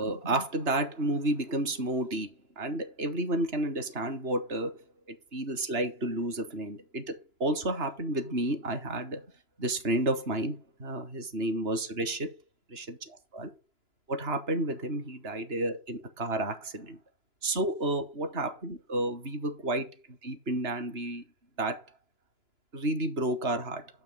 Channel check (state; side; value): late; left; 2.9 ms